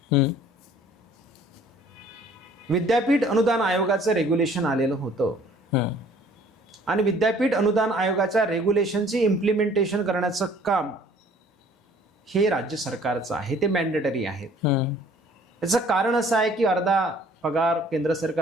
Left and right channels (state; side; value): normal; both; correlation 0.55